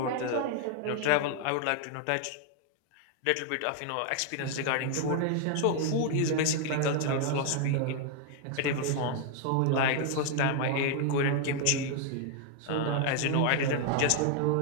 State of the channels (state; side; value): different; both; correlation 0.00